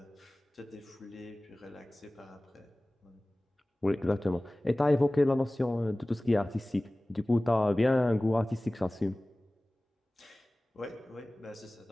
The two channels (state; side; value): normal; both; correlation 0.98